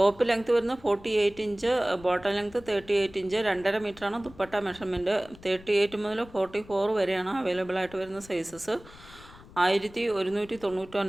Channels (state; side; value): noise; left; rumble, 21 dB below the sound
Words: ലെങ്ത്ത് വരുന്നത് 48 ഇഞ്ച്, ബോട്ടം ലെങ്ത്ത് 38 ഇഞ്ച്, 2.5 മീറ്ററാണ് ദുപ്പട്ട മെഷർമെൻറ്റ്. 38 മുതൽ 44 വരെയാണ് അവൈലബിൾ ആയിട്ട് വരുന്ന സൈസസ്.